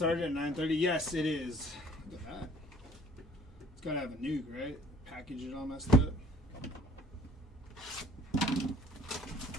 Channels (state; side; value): normal; both; correlation 0.56